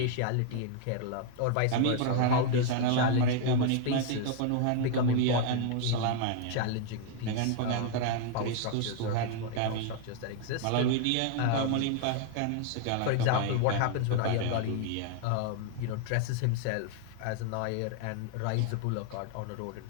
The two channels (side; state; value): both; different; correlation 0.00